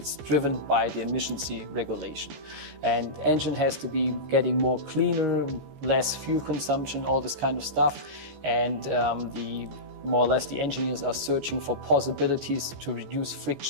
driven by the emissions regulation. And engine has to be getting more cleaner, less fuel consumption, all this kind of stuff. And more or less the engineers are searching for possibilities to reduce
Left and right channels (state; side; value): late; left; 14 ms